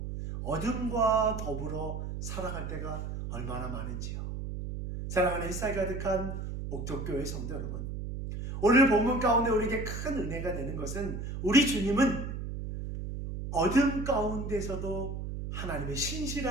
어둠과 더불어 살아갈 때가 얼마나 많은지요. 사랑하는 햇살 가득한 옥덕교회 성도 여러분, 오늘 본문 가운데 우리에게 큰 은혜가 되는 것은 우리 주님은 어둠 가운데서도 하나님의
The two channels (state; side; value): noise; right; hum, 5 dB below the sound